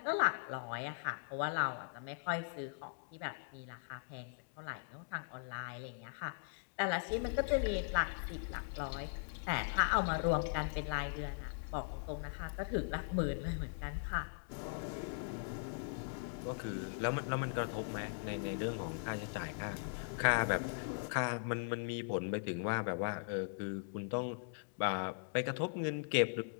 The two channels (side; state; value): right; silent; digital silence